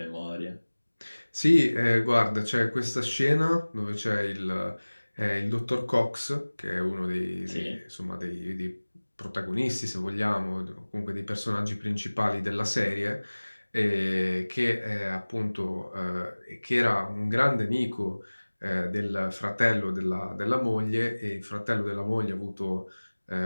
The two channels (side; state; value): both; inverted; correlation -1.00